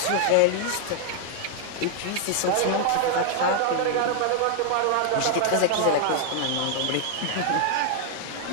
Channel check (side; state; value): both; different; correlation 0.00